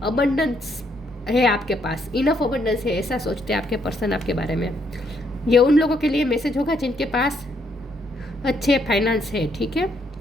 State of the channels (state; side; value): normal; both; correlation 0.73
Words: अबंडेंस है आपके पास, इनफ अबंडेंस है, ऐसा सोचते हैं आपके पर्सन आपके बारे में। ये उन लोगों के लिए मैसेज होगा जिनके पास अच्छे फाइनेंस है, ठीक है।